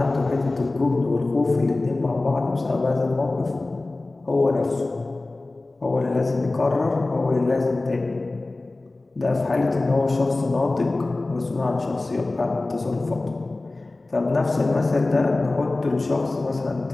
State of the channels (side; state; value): right; quieter; 3.1 dB